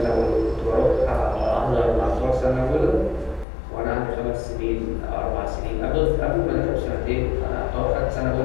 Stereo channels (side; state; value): right; drops out; at 3.5 s